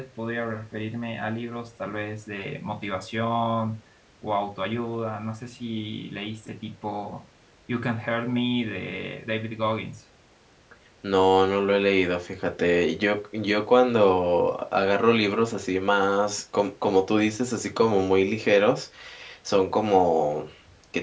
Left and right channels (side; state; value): both; identical; correlation 1.00